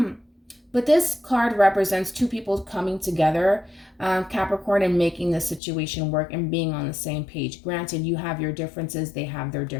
But this card represents two people coming together, Capricorn, and making the situation work and being on the same page. Granted, you have your differences, they have their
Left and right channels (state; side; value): drops out; right; at 5.6 s